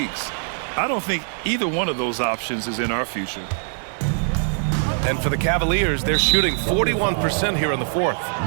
I don't think either one of those options is in our future. And for the Cavaliers, they're shooting 41% here in the fourth.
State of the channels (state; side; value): silent; left; digital silence